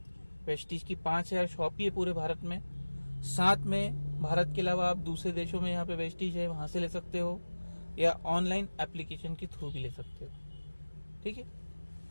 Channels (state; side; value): inverted; both; correlation -1.00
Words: वेस्टीज की 5000 शॉप ही है पूरे भारत में। साथ में भारत के अलावा आप दूसरे देशों में यहाँ पे वेस्टीज है, वहां से ले सकते हो या ऑनलाइन एप्लीकेशन के थ्रू भी ले सकते हो। ठीक है।